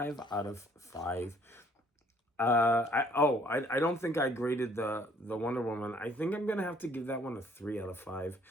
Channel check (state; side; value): normal; both; correlation 0.60